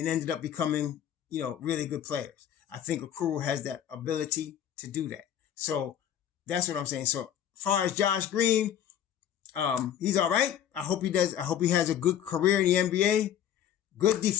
ended up becoming, really good players. I think Okoro has that ability to do that. So that's what I'm saying. So as far as Josh Green, he's all right. I hope he does. I hope he has a good career in the NBA. Good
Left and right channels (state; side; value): quieter; right; 10.0 dB